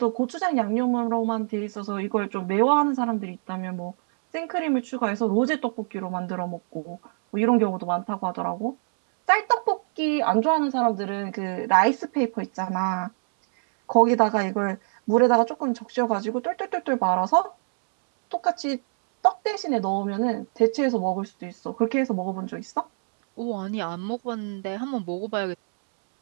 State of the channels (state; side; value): silent; left; 62 dB below the other